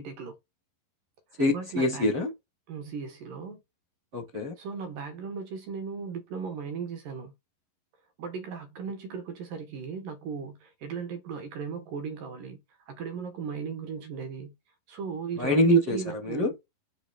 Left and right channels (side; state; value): left; late; 11 ms